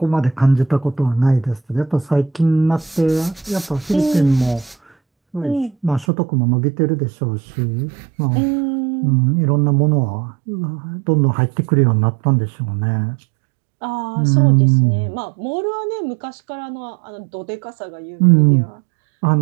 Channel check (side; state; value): left; drops out; at 6.1 s